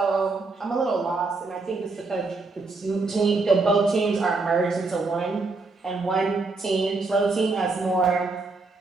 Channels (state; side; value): quieter; left; 3.8 dB